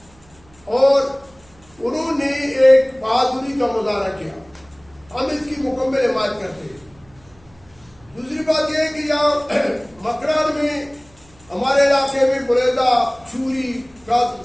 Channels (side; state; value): right; noise; hum, 29 dB below the sound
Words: اور انہوں نے ایک بہادری کا مظاہرہ کیا. ہم اس کی مکمل حمایت کرتے ہیں. دوسری بات یہ ہے کہ یہاں مکران میں ہمارے علاقے میں بریدہ, چوری,